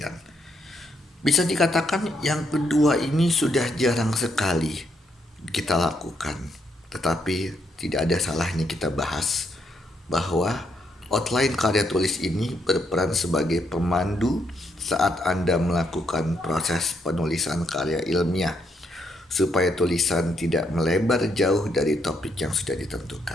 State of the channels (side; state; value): both; normal; correlation 0.76